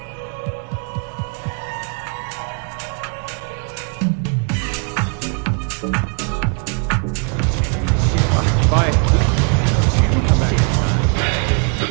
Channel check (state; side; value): quieter; left; 37.7 dB